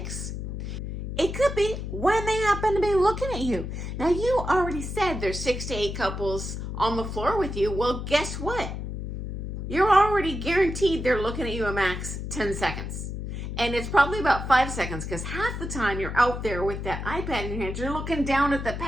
It could be when they happen to be looking at you. Now, you already said there's 6 to 8 couples on the floor with you. Well, guess what? You're already guaranteed they're looking at you a max 10 seconds. And it's probably about 5 seconds because half the time you're out there with that iPad in your hand, you're looking down at the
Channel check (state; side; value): noise; left; hum, 5 dB below the sound